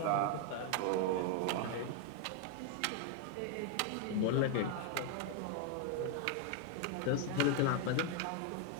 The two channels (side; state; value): both; different; correlation 0.00